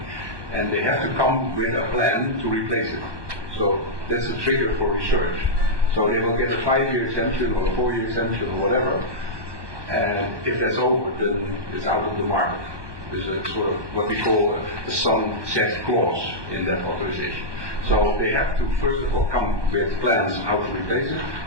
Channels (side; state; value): left; late; 1.2 ms